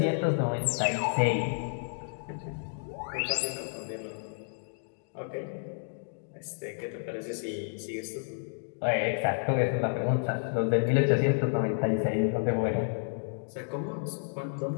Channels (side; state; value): right; silent; digital silence